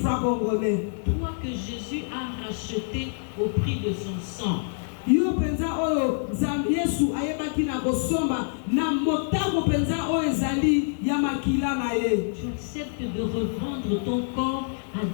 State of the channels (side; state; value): right; silent; digital silence